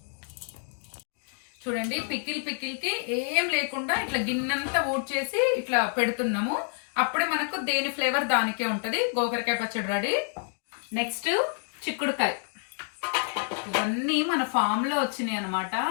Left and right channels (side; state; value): right; silent; 55 dB below the other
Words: చూడండి, పికిల్కి ఏం లేకుండా ఇట్లా గిన్నెంతా ఊడ్చేసి ఇట్లా పెడుతున్నాము. అప్పుడే మనకు దేని ఫ్లేవర్ దానికే ఉంటుంది. గోకరకాయ పచ్చడి రెడీ. నెక్స్ట్ చిక్కుడుకాయ. ఇవన్నీ మన ఫామ్లో వచ్చినాయి అనమాట,